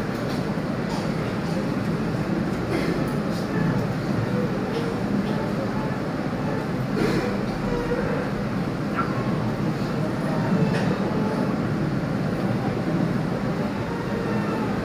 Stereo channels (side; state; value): both; identical; correlation 1.00